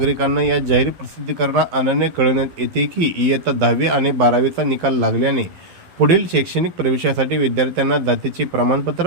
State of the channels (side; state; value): left; late; 11 ms